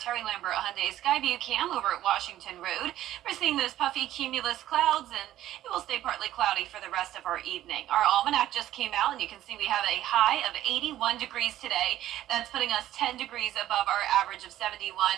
Lambert Hyundai Skyview cam over at Washington Road. We're seeing those puffy cumulus clouds, and it will stay partly cloudy for the rest of our evening. Our almanac just came out, and you can see we have a high of 81 degrees today. That's putting us 10 degrees above our average of 71,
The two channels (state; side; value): quieter; left; 13.3 dB